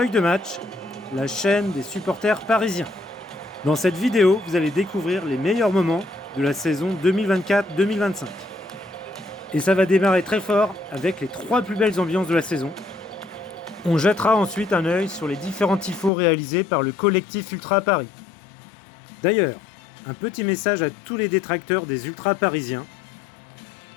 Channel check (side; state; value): right; drops out; at 16.1 s